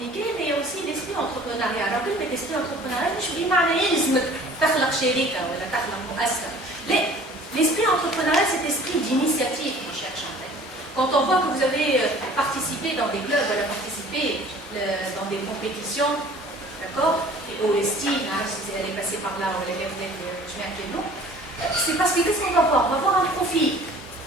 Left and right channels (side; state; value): both; normal; correlation 0.49